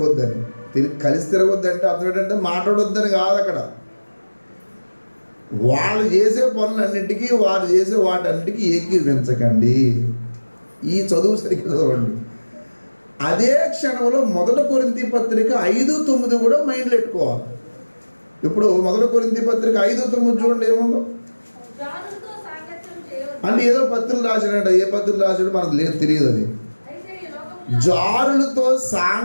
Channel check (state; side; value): inverted; both; correlation -1.00